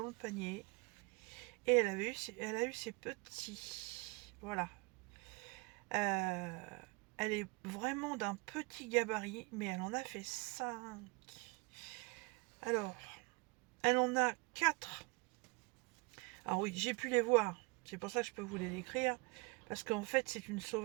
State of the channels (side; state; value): left; quieter; 28.6 dB